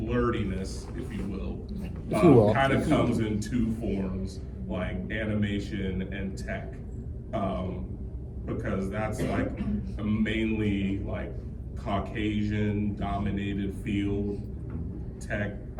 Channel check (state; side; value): identical; both; correlation 1.00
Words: if you will, kind of comes in two forms, like animation and tech, because that's like a mainly like Caucasian dominated field, tech.